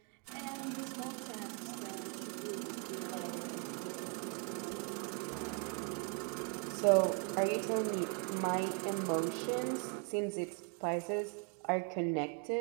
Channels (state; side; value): quieter; left; 36.3 dB